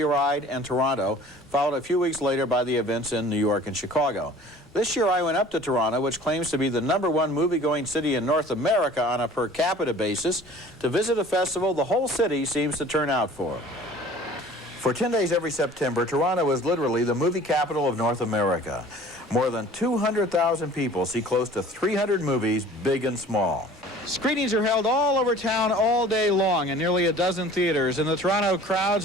and Toronto, followed a few weeks later by the events in New York and Chicago. This year I went up to Toronto, which claims to be the #1 movie-going city in North America on a per capita basis, to visit a festival the whole city seems to turn out for. For 10 days every September, Toronto is literally the movie capital of North America. More than 200,000 people see close to 300 movies, big and small. Screenings are held all over town all day long in nearly a dozen theaters, and the Toronto crowds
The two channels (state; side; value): normal; both; correlation 0.47